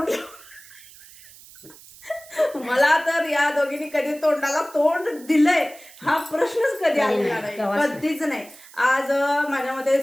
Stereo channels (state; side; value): noise; right; hiss, 21 dB below the sound